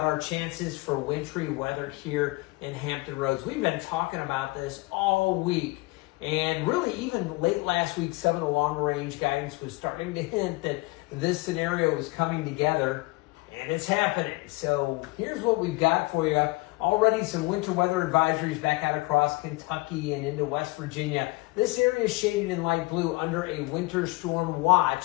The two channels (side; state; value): right; quieter; 23.5 dB